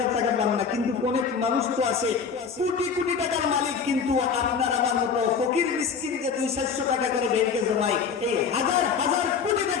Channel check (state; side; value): quieter; right; 6.2 dB